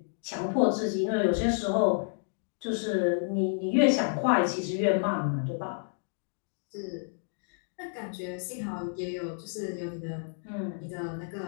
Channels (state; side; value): silent; right; digital silence